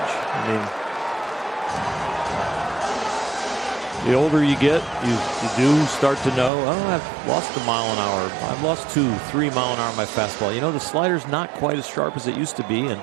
I mean, the older you get, you do start to know, oh, I've lost a mile an hour. I've lost 2-3 mile an hour on my fastball. You know, the slider's not quite as sharp as it used to be. And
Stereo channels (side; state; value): left; drops out; at 6.5 s